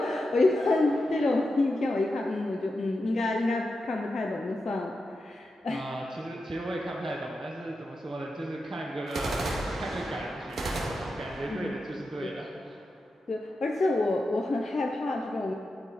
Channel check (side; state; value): both; normal; correlation 0.89